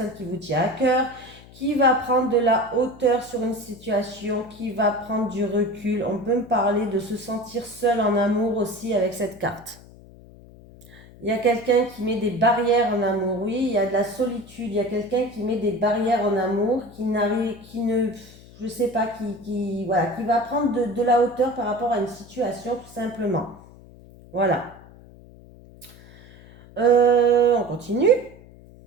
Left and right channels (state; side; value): noise; left; hum, 21 dB below the sound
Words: qui vous tient à cœur qui va prendre de la hauteur sur une situation, qui va prendre du recul. On peut me parler de se sentir seul en amour aussi avec cette carte. Il y a quelqu'un qui met des barrières en amour, oui, il y a de la solitude, il y a quelqu'un qui met des barrières en amour, je sais pas, voilà, qui va prendre de la hauteur par rapport à une situation tout simplement. Voilà. On continue.